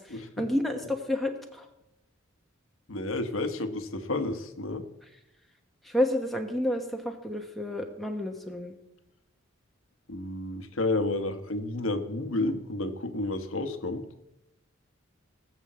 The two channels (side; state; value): both; normal; correlation 0.50